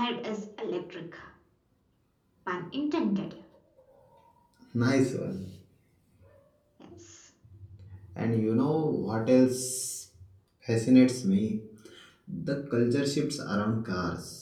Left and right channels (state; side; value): identical; both; correlation 1.00